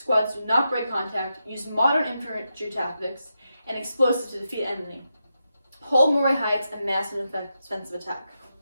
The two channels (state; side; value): inverted; both; correlation -0.87